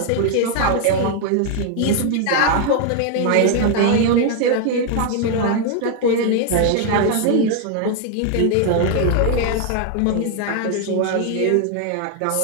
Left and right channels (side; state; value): both; different; correlation 0.00